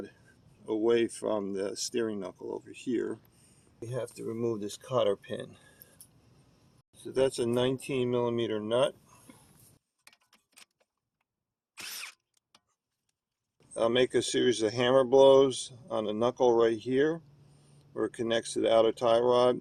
away from the steering knuckle over here. We have to remove this cotter pin. So that's a 19mm nut. I'll make a series of hammer blows on the knuckle right here where it connects to the outer tie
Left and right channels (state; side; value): identical; both; correlation 1.00